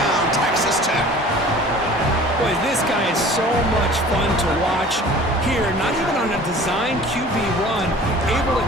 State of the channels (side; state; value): both; normal; correlation 0.45